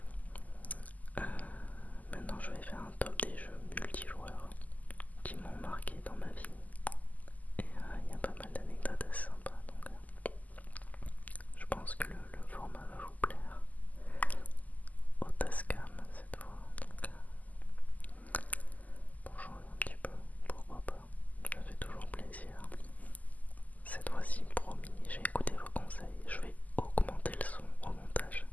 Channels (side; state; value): right; late; 0.078 ms